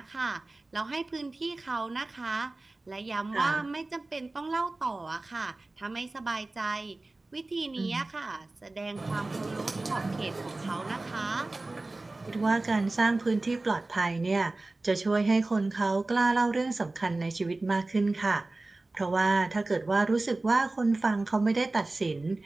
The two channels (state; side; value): quieter; left; 3.1 dB